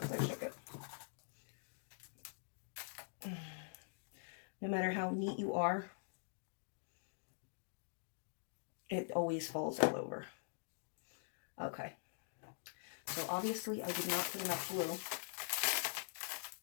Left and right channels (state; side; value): silent; right; digital silence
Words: I shook it. No matter how neat you are, it always falls all over. Okay. So obviously I did not put enough glue